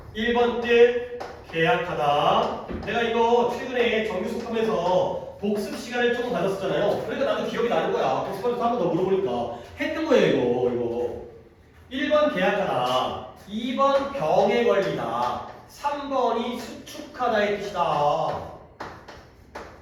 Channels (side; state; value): both; identical; correlation 1.00